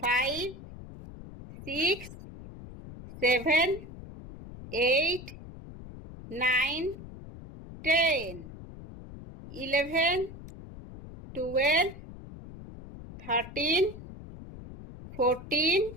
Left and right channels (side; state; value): left; noise; rumble, 14 dB below the sound